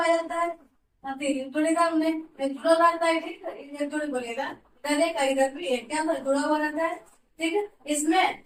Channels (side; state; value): both; identical; correlation 1.00